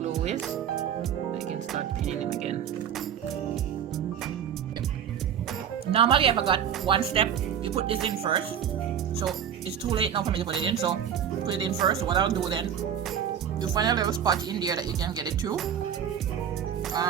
is, I can start pinning it again. Normally I forgot one step. You put this in first. So it's too late now for me to put it in. So put it in first. So what I'll do then, you find a little spot in there that you can get it to.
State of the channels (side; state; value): left; quieter; 8.9 dB